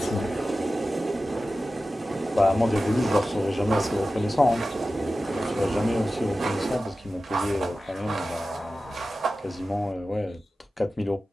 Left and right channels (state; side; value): normal; both; correlation 0.94